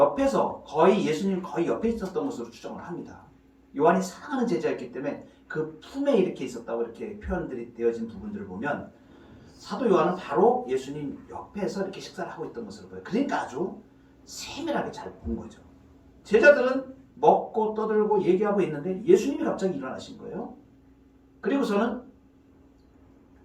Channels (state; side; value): identical; both; correlation 1.00